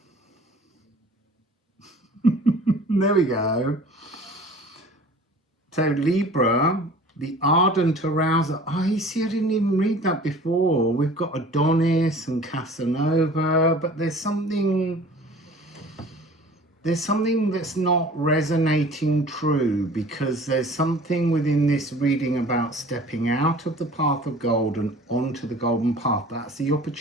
There we go. So Libra, the ardent arouser. Oh, you see, I didn't even read that before. We've got Adonis and Casanova, but there's something that's not resonating true, because there's something within this reading about stepping out of the path of gold and onto the golden path. That's the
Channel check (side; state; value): both; normal; correlation 0.46